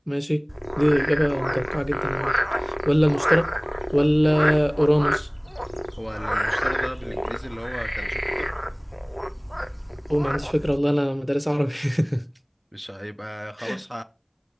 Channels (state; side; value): identical; both; correlation 1.00